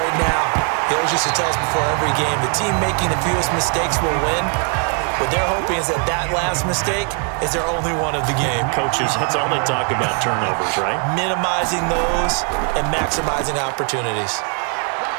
now. He always used to tell us before every game, the team making the fewest mistakes will win. What they're hoping is that that last mistake is their only one of the game. Coaches, that's all they talk about, turnovers, right? Minimizing those and maximizing opportunities.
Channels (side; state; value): left; quieter; 38.8 dB